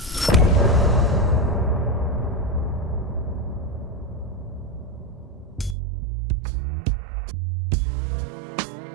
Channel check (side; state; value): left; drops out; at 5.8 s